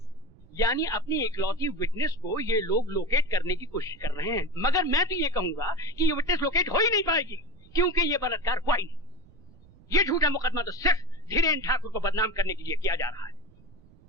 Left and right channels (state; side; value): noise; right; rumble, 25 dB below the sound